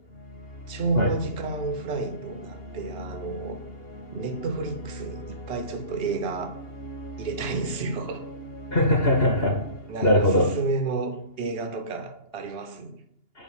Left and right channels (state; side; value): late; right; 2.8 ms